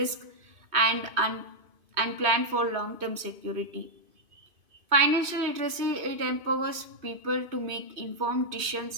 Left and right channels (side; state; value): left; late; 2.5 ms